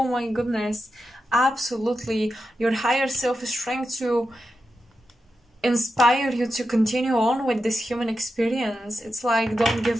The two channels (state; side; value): normal; both; correlation 0.89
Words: my goodness, absolutely. Your higher self is trying to inspire you to continue on with this human experience. It's like, don't